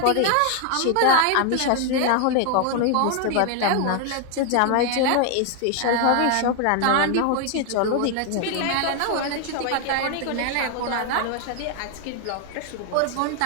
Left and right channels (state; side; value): different; both; correlation 0.00